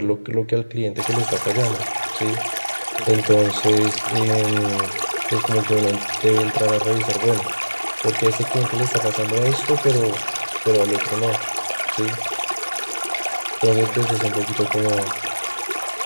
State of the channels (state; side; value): inverted; both; correlation -1.00